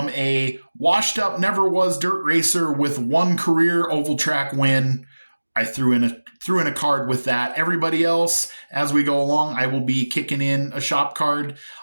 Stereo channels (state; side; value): inverted; both; correlation -1.00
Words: a washed up, never was dirt racer with one career oval track win. I threw in a card with that. Everybody else, as we go along, I will be kicking in a shop card.